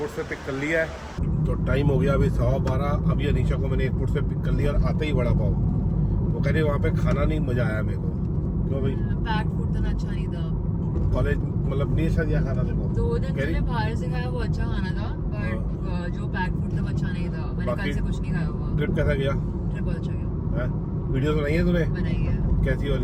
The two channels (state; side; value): identical; both; correlation 1.00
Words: से पिक कर लिया है। तो टाइम हो गया अभी 12:15। अभी अनीशा को मैंने एयरपोर्ट से पिक कर लिया और आते ही वड़ा पाव। वो कह रही वहाँ पे खाना नहीं मज़ा आया मेरे को। क्यों भाई? पैक्ड फूड तो अच्छा नहीं था। कॉलेज मतलब नहीं अच्छा दिया खाना देखो। 2 दिन मैंने बाहर से खाया, वो अच्छा खाना था, बट जो पैक्ड फूड था वो अच्छा नहीं था। मैंने कल से कुछ नहीं खाया हुआ। ट्रिप कैसा गया? ट्रिप बहुत अच्छा गया। वीडियोस बनाई है तूने? बनाई है। कैसी